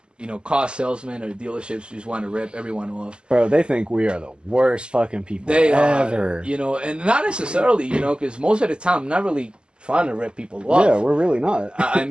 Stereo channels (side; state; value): left; late; 0.049 ms